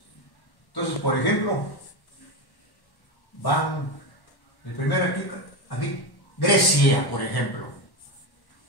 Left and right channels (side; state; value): right; late; 1.1 ms